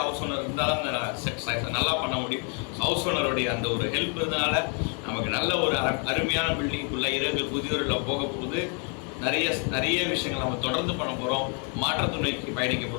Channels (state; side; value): quieter; right; 39.3 dB